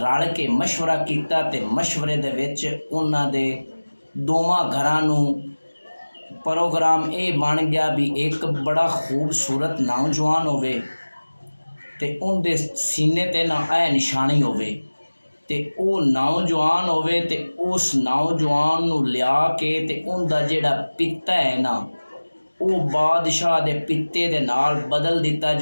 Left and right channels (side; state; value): both; inverted; correlation -1.00